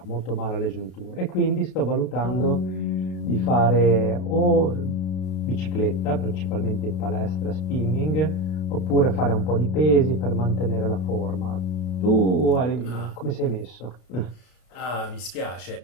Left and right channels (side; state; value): right; late; 33 ms